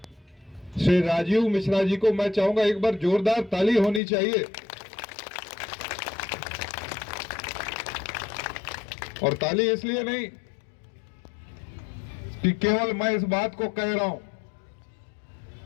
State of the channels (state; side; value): drops out; right; at 4.0 s